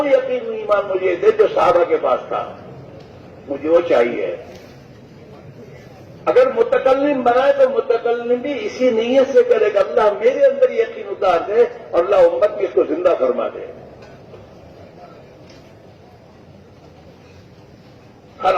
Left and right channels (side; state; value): both; identical; correlation 1.00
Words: یقین ایمان مجھے دے جو صحابہ کے پاس تھا، مجھے وہ چاہیے۔ اگر متکلم بنائے تو متکلم بھی اسی نیت سے کرے کہ اللہ میرے اندر یقین اتار دے اور اللہ امت کی اس کو زندہ فرما دے۔ ہر